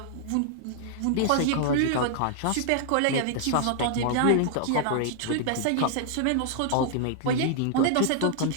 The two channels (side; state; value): both; different; correlation -0.01